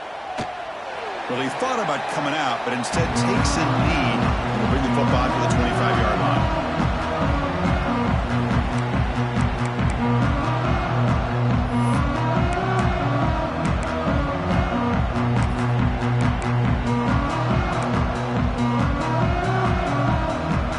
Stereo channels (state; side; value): identical; both; correlation 1.00